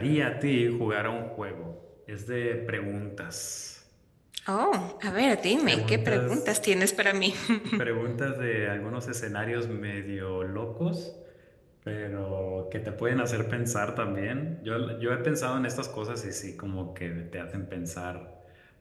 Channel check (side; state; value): both; identical; correlation 1.00